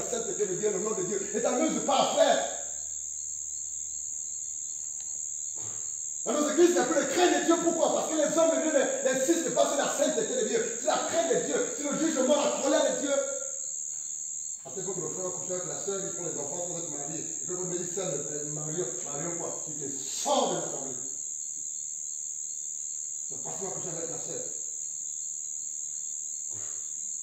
sainteté de Dieu, le nom de Dieu. Ne t'amuse pas, frère. Dans nos églises, il n'y a plus de crainte de Dieu. Pourquoi? Parce que les hommes de Dieu n'insistent pas sur la sainteté de Dieu, sur la crainte de Dieu, sur le jugement, la colère de Dieu. Après, quand le frère couche avec la soeur, ils font les enfants sans être mariés. Et puis, quand ils disent ça, Marion quoi? Il te sort de la famille. C'est pas toi coucher avec la soeur.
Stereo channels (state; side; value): identical; both; correlation 1.00